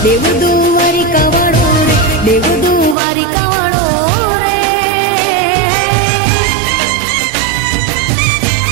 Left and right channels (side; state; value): left; drops out; at 3.0 s